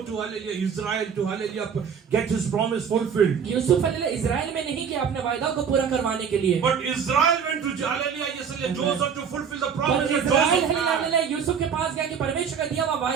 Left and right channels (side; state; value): left; quieter; 7.0 dB